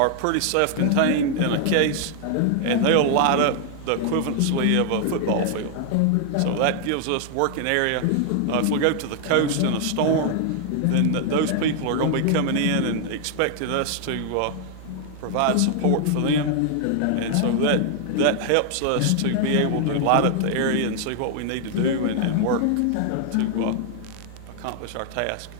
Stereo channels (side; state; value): both; different; correlation 0.00